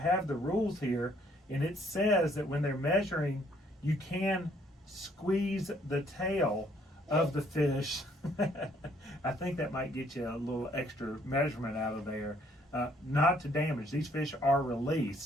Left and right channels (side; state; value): both; normal; correlation 0.65